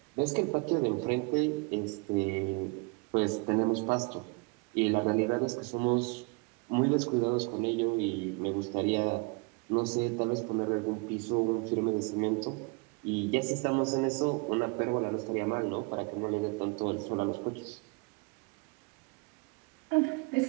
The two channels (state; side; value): quieter; left; 30.5 dB